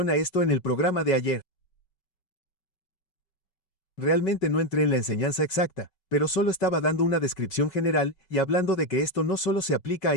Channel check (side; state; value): right; late; 5.3 ms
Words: a esto en el programa de ayer. Realmente no entré en la enseñanza exacta, pero solo estaba dando una descripción general y hablando de que esto no solo se aplica a